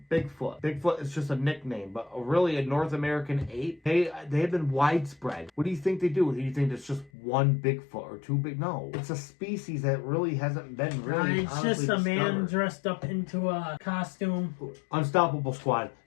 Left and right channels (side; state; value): right; drops out; at 7.1 s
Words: Bigfoot. Bigfoot is just a nickname, but really a North American ape. They have been widespread. What do you think they do? Do you think it's just one Bigfoot or two big? No, it's a species that really hasn't been really. It's just a man dressed up into a costume. Unstoppable Squad.